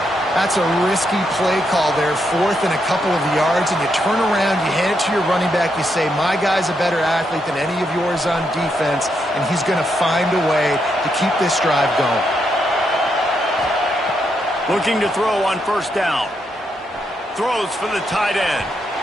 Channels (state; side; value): normal; both; correlation 0.80